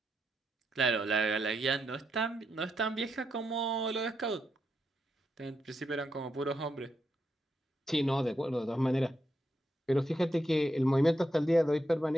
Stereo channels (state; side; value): normal; both; correlation 0.82